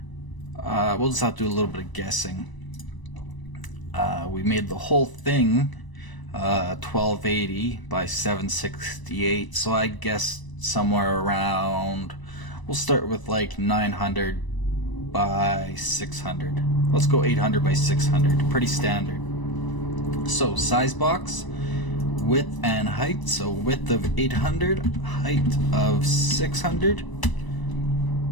We'll just have to do a little bit of guessing. We made the whole thing 1280 by 768, so I guess somewhere around, we'll start with like 900 by 600. Let's go 800 by 600, pretty standard. So size box, width and height, so width of 800, height of 600,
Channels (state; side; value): late; right; 1.0 ms